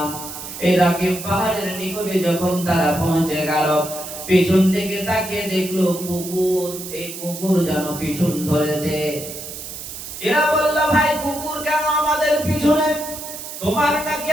এই রাকিম পাহাড়ের নিকটে যখন তারা পৌঁছে গেল, পিছন থেকে তাকিয়ে দেখলো কুকুর, এই কুকুর যেন পিছন ধরেছে। এরা বলল, ভাই কুকুর কেন আমাদের পিছনে? তোমার নাকি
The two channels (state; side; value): noise; right; hiss, 10 dB below the sound